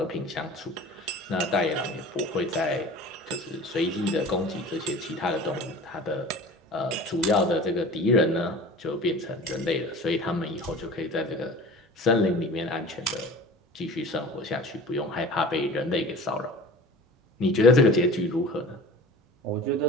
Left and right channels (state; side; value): normal; both; correlation 0.40